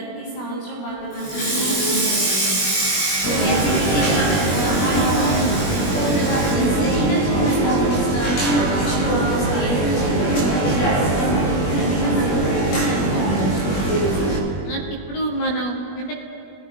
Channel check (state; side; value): late; right; 21 ms